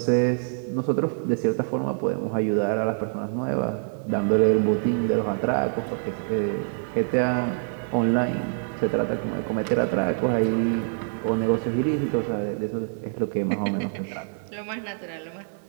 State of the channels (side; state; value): left; silent; digital silence